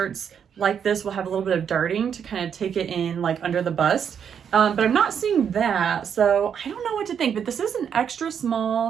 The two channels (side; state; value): left; quieter; 7.8 dB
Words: like this will have a little bit of darting to kind of take it in like under the bust. But I'm not seeing that, so I don't know what to think. But this is an extra